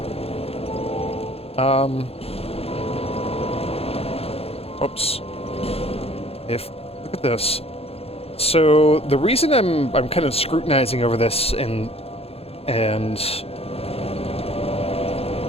Oops. Look at this. So the reason I'm kind of scrutinizing over this and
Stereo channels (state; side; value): late; right; 0.29 ms